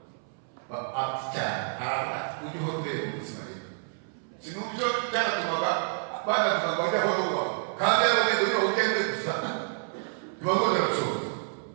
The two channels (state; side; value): silent; left; 59 dB below the other